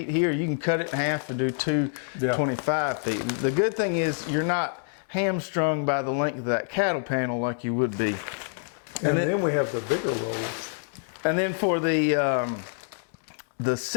here, you can cut it in half and do two 25 feet. The good thing is you're not hamstrung by the length of that cattle panel like you would be. And then we have the bigger rolls. And then for the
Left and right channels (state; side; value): silent; right; digital silence